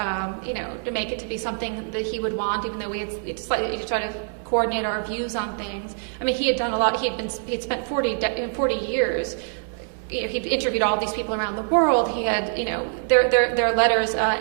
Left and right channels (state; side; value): silent; left; digital silence